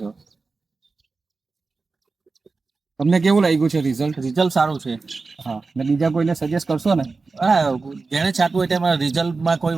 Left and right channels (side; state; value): left; quieter; 4.0 dB